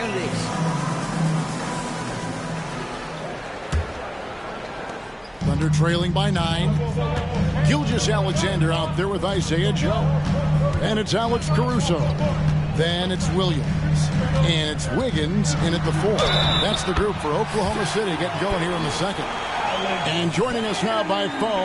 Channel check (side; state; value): both; identical; correlation 1.00